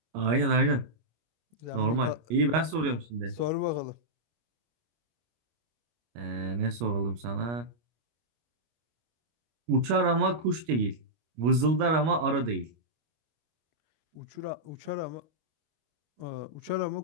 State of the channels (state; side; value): late; left; 25 ms